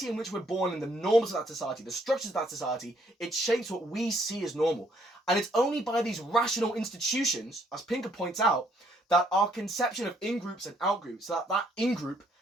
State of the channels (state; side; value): normal; both; correlation 0.68